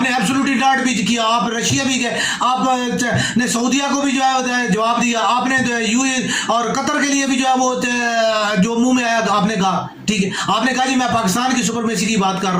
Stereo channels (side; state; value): both; identical; correlation 1.00